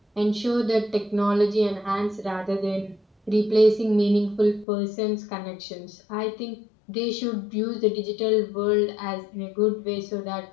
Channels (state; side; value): drops out; right; at 4.7 s